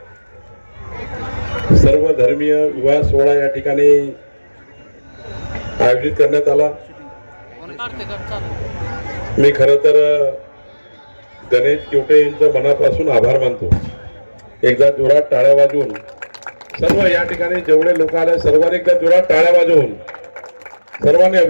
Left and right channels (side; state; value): both; inverted; correlation -1.00